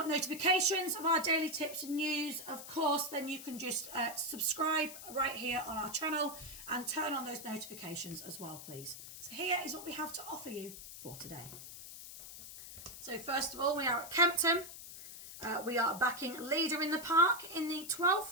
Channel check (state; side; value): noise; left; hiss, 12 dB below the sound